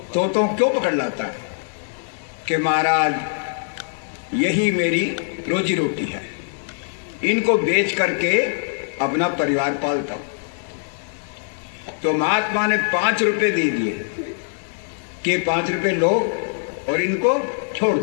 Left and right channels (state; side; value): silent; right; 64 dB below the other